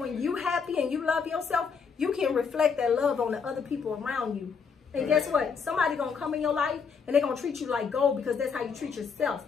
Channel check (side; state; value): right; quieter; 5.8 dB